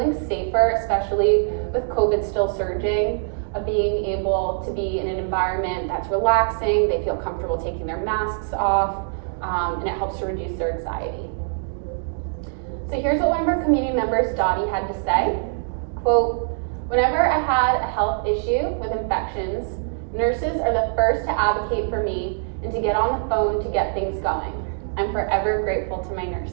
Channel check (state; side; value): silent; left; digital silence